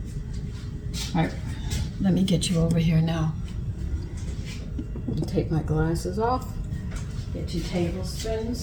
All right, let me get you over here now. Take my glasses off. Get 2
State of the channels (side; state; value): both; identical; correlation 1.00